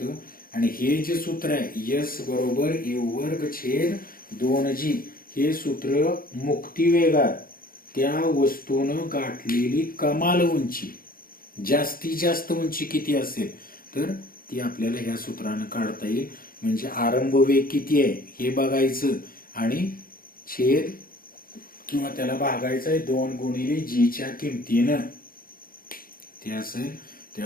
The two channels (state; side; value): late; right; 0.42 ms